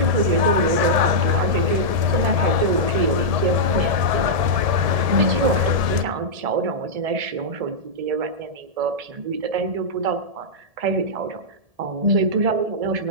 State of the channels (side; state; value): left; late; 1.7 ms